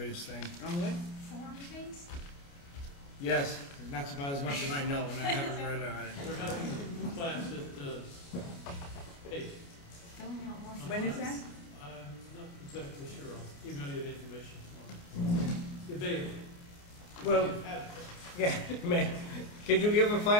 thing. On what? Form-based? Yes, that's about as much as I know, and I haven't read on it. We're having a class at, hey. Filling out more. When is that? I'm not exactly sure, I'll email you the information tomorrow. Available. Well, You've had it. yeah, man, could you give a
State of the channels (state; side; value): late; right; 29 ms